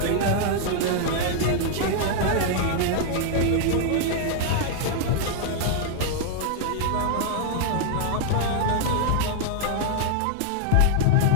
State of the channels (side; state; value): both; different; correlation 0.00